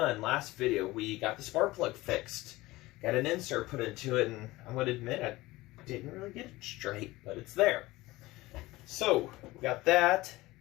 Last video, we got the spark plug fixed. Got an insert put into it, and I'm going to admit I didn't really get it straight, but it's there. So, we got that.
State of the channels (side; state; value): right; quieter; 19.4 dB